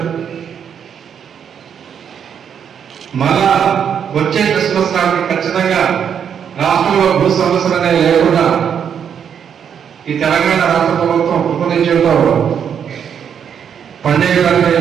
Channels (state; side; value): quieter; left; 8.0 dB